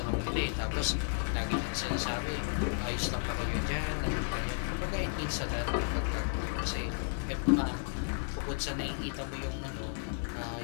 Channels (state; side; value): silent; right; digital silence